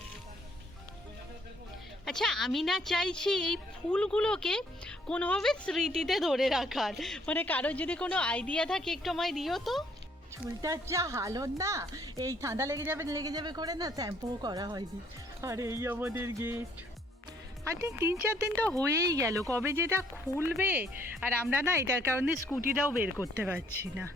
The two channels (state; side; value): normal; both; correlation 0.65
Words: আচ্ছা আমি না চাইছি এই ফুলগুলোকে কোনোভাবে স্মৃতিতে ধরে রাখার, মানে কারোর যদি কোনো আইডিয়া থাকে একটু আমায় দিও তো। চুলটার যা হালত না, এই ঠান্ডা লেগে যাবে করে না শ্যাম্পুও করা হয়নি। আর এই আমাদের গেট, আই থিঙ্ক 3-4 দিন তো হয়েই গেল, কবে যেটা খুলবে। আর আমরা না এটার কারণে স্কুটিটাও বের করতে পারছি না।